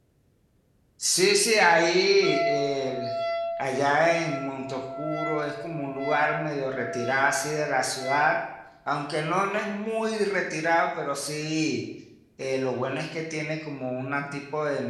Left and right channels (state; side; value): identical; both; correlation 1.00